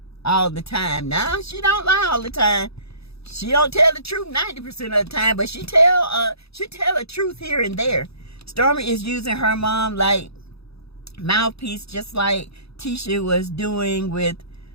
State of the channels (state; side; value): late; right; 0.78 ms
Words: all the time. No, she don't lie all the time. She don't tell the truth 90% of the time, but she tell the truth here and there. Stormy is using her mom like mouthpiece, just like Tisha was doing with